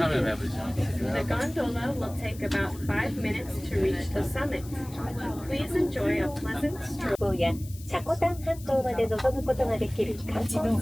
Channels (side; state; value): left; noise; hiss, 19 dB below the sound